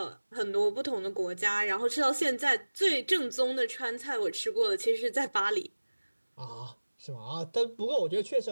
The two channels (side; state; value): both; inverted; correlation -1.00